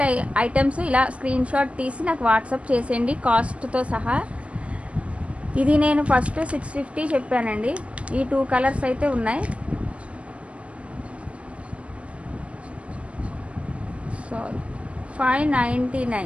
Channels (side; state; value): left; late; 0.062 ms